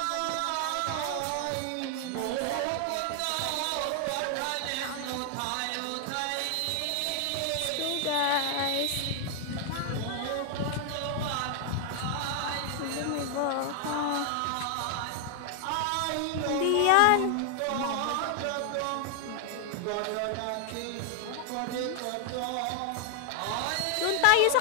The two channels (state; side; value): different; both; correlation 0.00